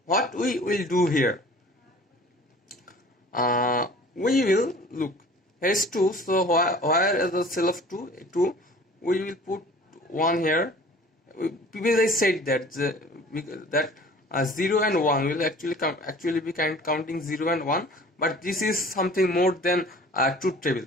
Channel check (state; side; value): normal; both; correlation 0.47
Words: what we will do here, we will look, here is 2, so where is the cell of 2, we will put 1 here, previously said that that 0 and 1 will actually be counting 0 and 1, but this is something more than truth table.